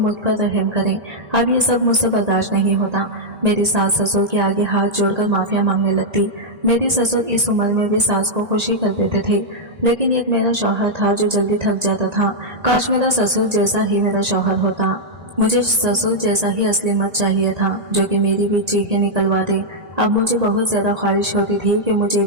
पर रहम करें, अब ये सब मुझसे बर्दाश्त नहीं होता। मेरी सास ससुर के आगे हाथ जोड़कर माफिया मांगने लगती। मेरी ससुर इस उम्र में भी सास को खुशी कर देते थे, लेकिन एक मेरा शौहर था जो जल्दी थक जाता था। काश मेरा ससुर जैसा ही मेरा शौहर होता। मुझे ससुर जैसा ही असली मर्द चाहिए था जो कि मेरी भी चीखें निकलवा दे। अब मुझे बहुत ज्यादा ख्वाहिश होती थी कि मुझे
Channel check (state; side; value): late; left; 1.8 ms